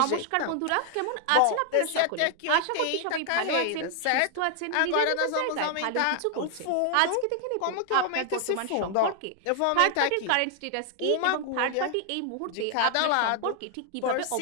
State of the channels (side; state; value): both; different; correlation 0.00